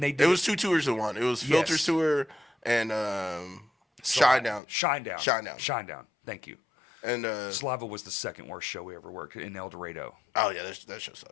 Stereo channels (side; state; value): right; drops out; at 4.6 s